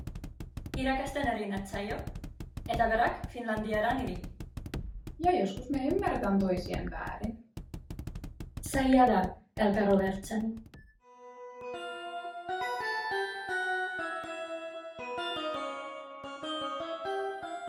Irakasta narinat sajo. Etäverak Finlandiaran iri. Ja joskus me ymmärretään toisien väärin. Sajada elkarovertsen.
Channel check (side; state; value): both; identical; correlation 1.00